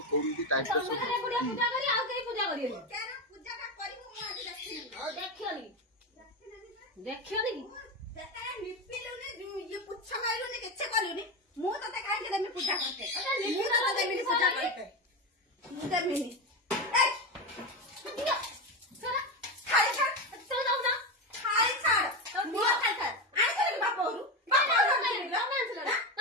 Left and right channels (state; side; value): normal; both; correlation 0.16